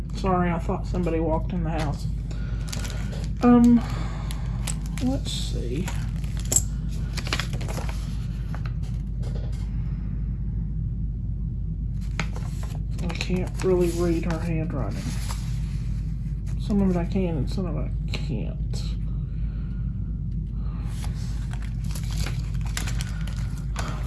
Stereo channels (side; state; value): both; identical; correlation 1.00